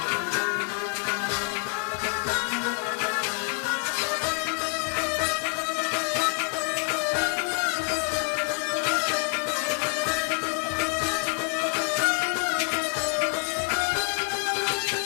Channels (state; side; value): quieter; right; 36.6 dB